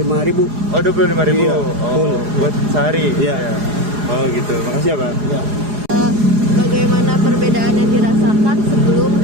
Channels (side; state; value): left; late; 4.8 ms